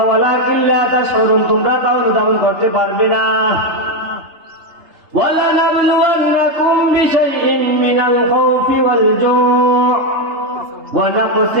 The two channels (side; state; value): left; late; 3.3 ms